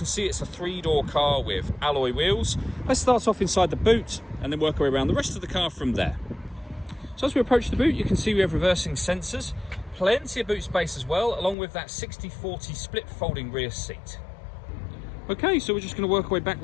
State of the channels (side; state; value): right; drops out; at 11.6 s